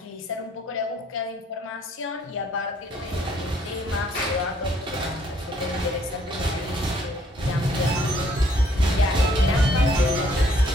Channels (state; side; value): normal; both; correlation 0.65